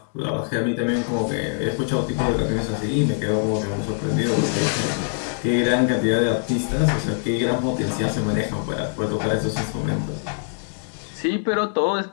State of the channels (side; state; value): right; silent; digital silence